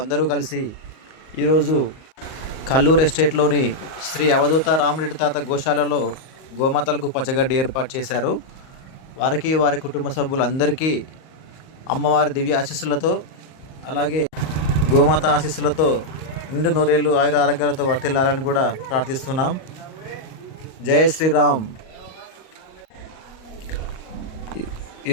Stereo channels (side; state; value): right; late; 38 ms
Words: అందరూ కలిసి ఈరోజు కల్లూరు ఎస్టేట్లోని శ్రీ అవధూత రామరెడ్డి తాత గోశాలలో గోమాతలకు పచ్చగడ్డి ఏర్పాటు చేశారు. వారికి వారి కుటుంబ సభ్యులందరికీ అమ్మవారి దివ్య ఆశీస్సులతో, అలాగే గోమాత ఆశీస్సులతో నిండు నూరేళ్ళు ఆయుర ఆరోగ్యాలతో వర్తిల్లాలని కూడా ప్రార్థిస్తున్నాం. జై శ్రీరామ్.